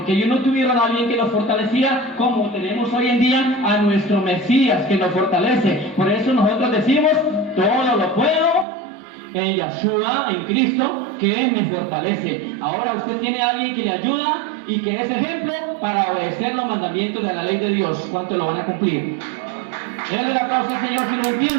ellos no tuvieron a alguien que los fortalecía como tenemos hoy en día a nuestro Mesías que nos fortalece. Por eso nosotros decimos, todo lo puedo en Yahshua, en Cristo, que me fortalece. Ahora usted tiene a alguien que le ayuda y que es ejemplo para obedecer los mandamientos de la ley de Dios. ¿Cuánto lo van a cumplir? Denle la causa al Señor si lo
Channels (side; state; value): left; drops out; at 8.7 s